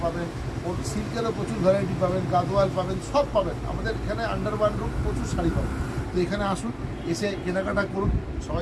পাবেন, সিল্কেরও প্রচুর ভ্যারাইটি পাবেন, গাদোয়াল পাবেন, সব পাবেন। আমাদের এখানে আন্ডার ওয়ান রুম প্রচুর শাড়ি পাবেন। তো এখানে আসুন, এসে কেনাকাটা করুন।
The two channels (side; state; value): both; identical; correlation 1.00